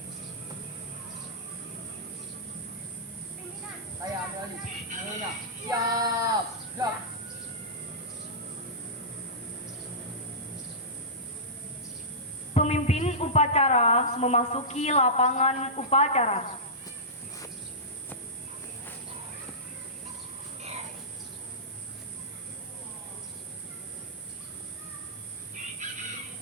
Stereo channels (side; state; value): both; normal; correlation -0.16